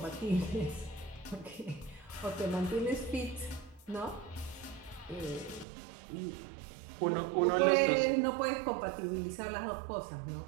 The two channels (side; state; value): left; drops out; at 5.7 s